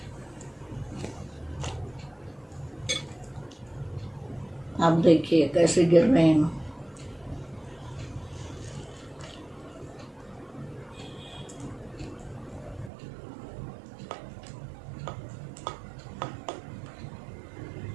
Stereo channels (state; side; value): drops out; left; at 12.9 s